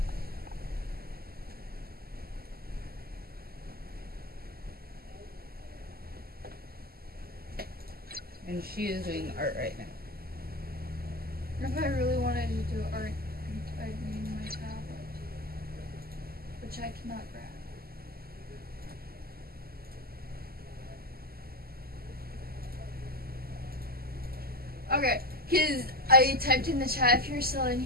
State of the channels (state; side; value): late; left; 0.45 ms